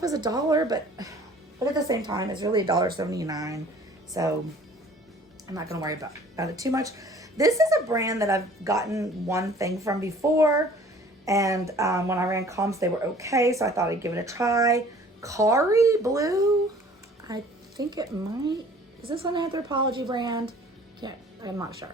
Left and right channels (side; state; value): both; normal; correlation 0.51